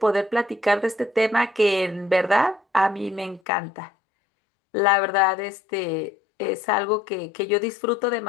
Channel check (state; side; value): drops out; right; at 3.4 s